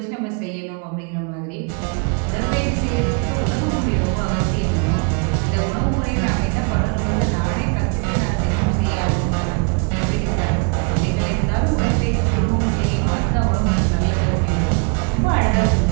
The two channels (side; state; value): left; quieter; 35.7 dB